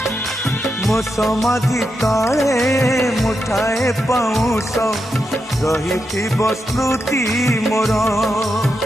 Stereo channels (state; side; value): normal; both; correlation 0.86